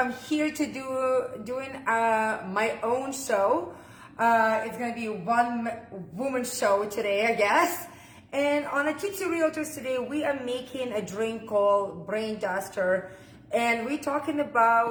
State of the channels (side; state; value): both; identical; correlation 1.00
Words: here to doing my own show. It's going to be one woman show today, I guess. And on a Tipsy Realtors today, we are making a drink called Brain Duster. And we're talking